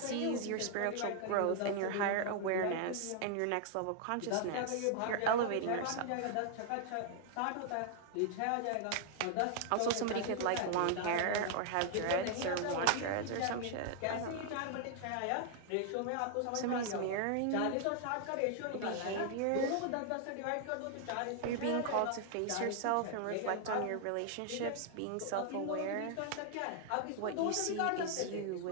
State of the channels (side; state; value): both; different; correlation 0.00